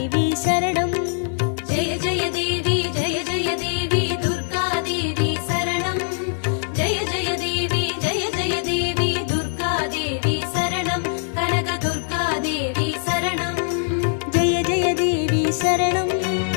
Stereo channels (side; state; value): right; silent; digital silence